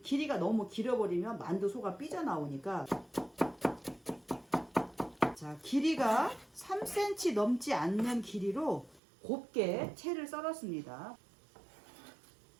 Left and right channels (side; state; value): left; drops out; at 9.0 s